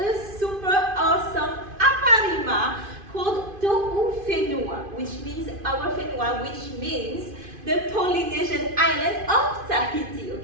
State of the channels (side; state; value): left; late; 2.5 ms